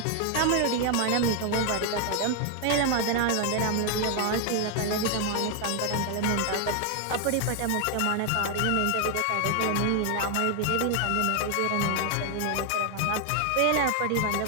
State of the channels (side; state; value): both; different; correlation 0.00